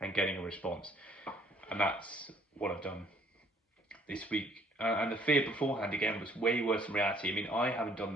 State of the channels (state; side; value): normal; both; correlation 0.61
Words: getting a response. And that's what I've done this week. And the fear beforehand, again, was way worse in reality. I mean, I haven't done